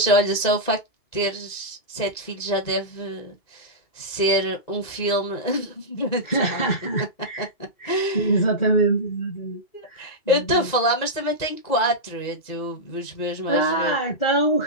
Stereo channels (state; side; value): late; right; 2.0 ms